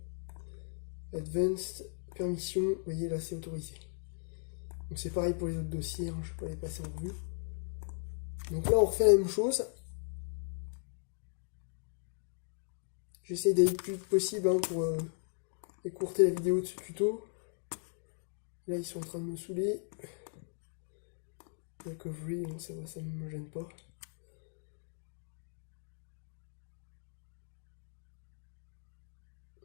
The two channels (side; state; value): right; silent; digital silence